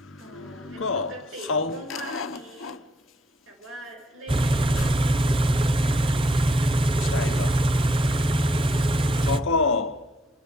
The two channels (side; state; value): both; normal; correlation 0.69